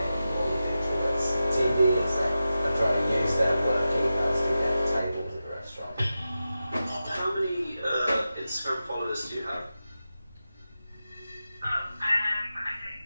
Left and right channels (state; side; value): inverted; both; correlation -0.92